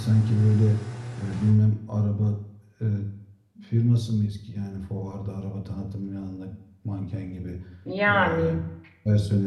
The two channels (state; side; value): identical; both; correlation 1.00